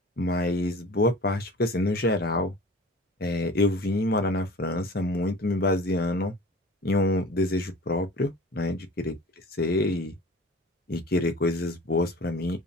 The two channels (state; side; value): normal; both; correlation 0.41